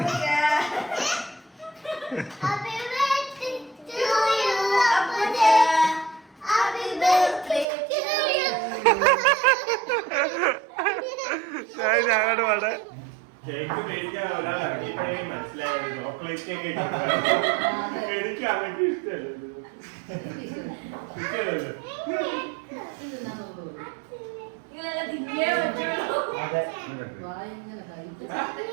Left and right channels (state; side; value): drops out; left; at 7.7 s